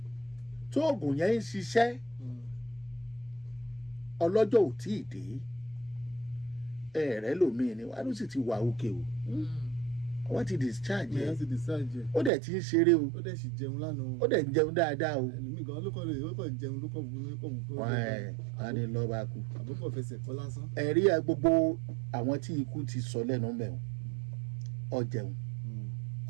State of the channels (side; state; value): left; drops out; at 12.3 s